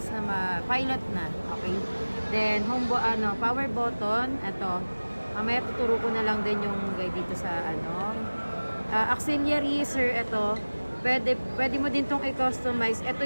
na pilot na. Okay. Then power button, ito. Mamaya tuturo ko na lang din yung guide dito sa ano. Auxiliary, sir, ito. Pwede mo din tong i-customize. Ito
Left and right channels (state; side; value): inverted; both; correlation -1.00